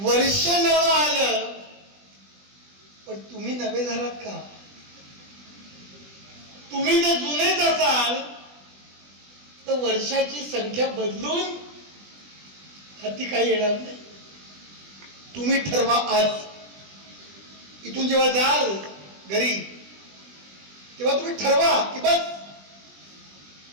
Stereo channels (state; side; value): late; left; 20 ms